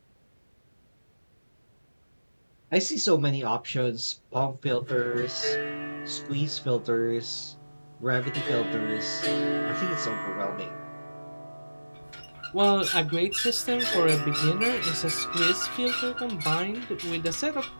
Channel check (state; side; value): inverted; both; correlation -1.00